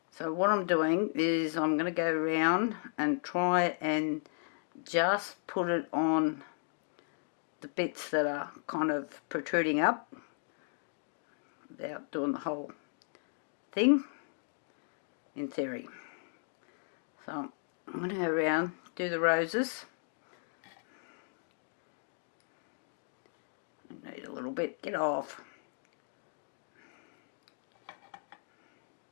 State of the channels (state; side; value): silent; right; digital silence